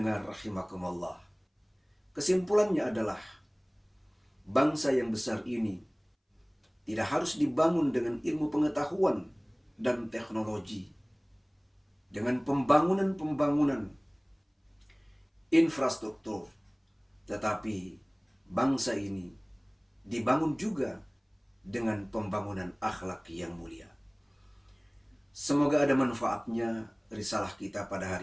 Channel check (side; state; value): both; identical; correlation 1.00